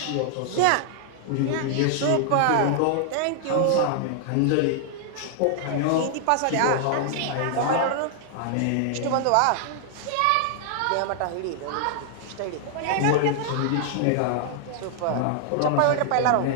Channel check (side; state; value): both; different; correlation 0.00